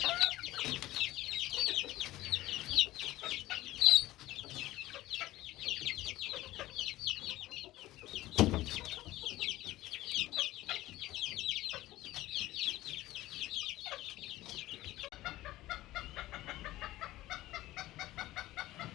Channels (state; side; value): quieter; right; 16.6 dB